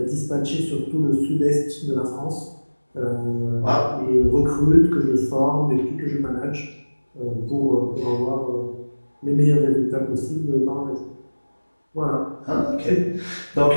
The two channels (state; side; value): inverted; both; correlation -1.00